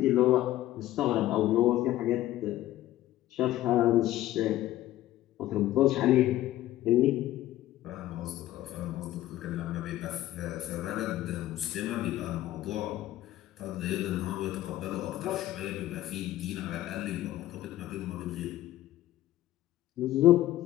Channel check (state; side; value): quieter; right; 14.6 dB